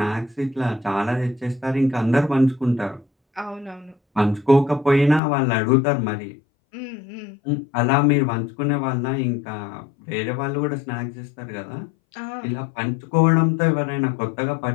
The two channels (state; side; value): drops out; right; at 5.2 s